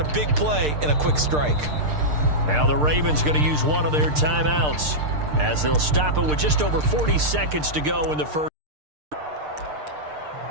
big play and a quick strike. Now the Ravens going to use one of their timeouts as they'll stop it with just over 40 seconds to go in the first.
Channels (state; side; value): late; left; 6.6 ms